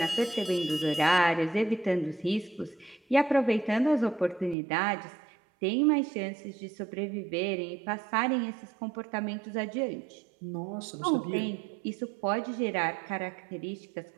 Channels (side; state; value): left; drops out; at 4.5 s